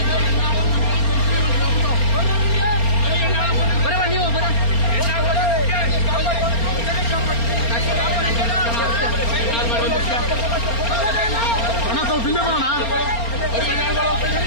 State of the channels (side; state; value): right; late; 4.3 ms